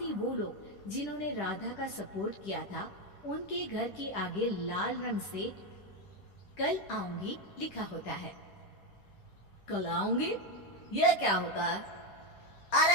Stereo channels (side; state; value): right; late; 10 ms